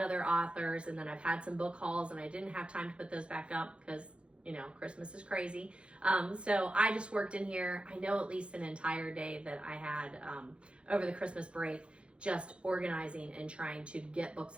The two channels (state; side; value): late; left; 0.058 ms